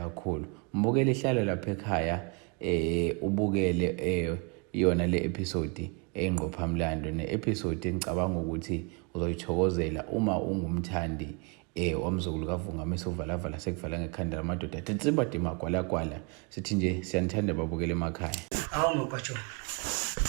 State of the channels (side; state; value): left; quieter; 33.6 dB